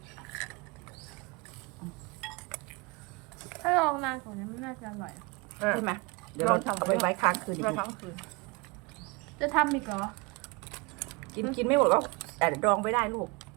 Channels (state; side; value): quieter; left; 26.6 dB